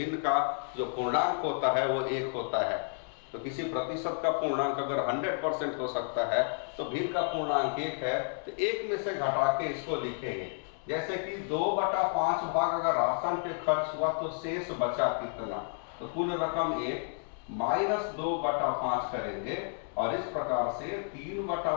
का जो पूर्णांक होता है वो 1 होता है। तो किसी प्रतिशत का पूर्णांक अगर 100% हो सकता है तो भिन्न का पूर्णांक 1 है, तो 1 में से घटा के इसको लिखेंगे। जैसे कि 2/5 भाग अगर राशन पे खर्च हुआ तो शेष बचा कितना, तो कुल रकम 1 माइनस 2/5 करेंगे और इस प्रकार से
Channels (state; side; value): silent; right; 57 dB below the other